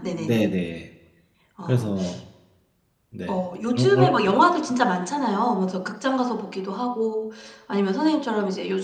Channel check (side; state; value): both; identical; correlation 1.00